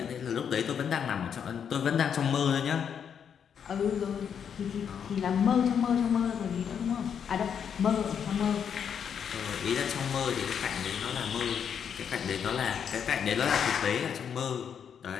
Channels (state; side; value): quieter; right; 7.7 dB